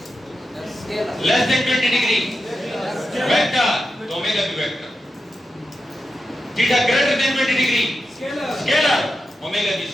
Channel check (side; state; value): both; normal; correlation 0.89